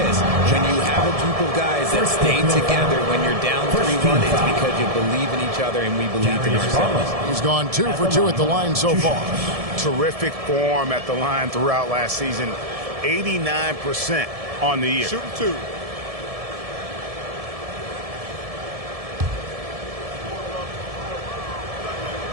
When you have a group of guys that stay together when you're down 3-1, it's because you believe in each other and we believe in ourselves. He's gone 2 for 2 at the line so far. Terrific form at the line throughout last season. 89% on the year. Shooting 2.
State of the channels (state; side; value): late; left; 1.7 ms